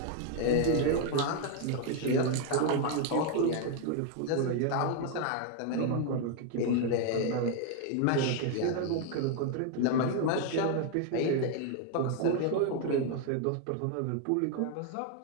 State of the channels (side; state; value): both; different; correlation 0.01